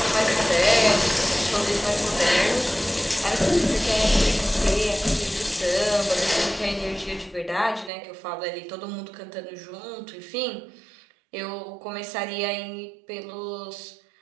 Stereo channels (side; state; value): left; drops out; at 7.9 s